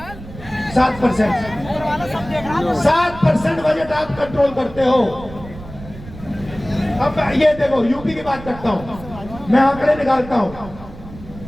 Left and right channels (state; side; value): noise; right; rumble, 15 dB below the sound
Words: 7%। 7% बजट आप कंट्रोल करते हो। अब ये देखो, यूपी की बात करता हूं, मैं आंकड़े निकालता हूं।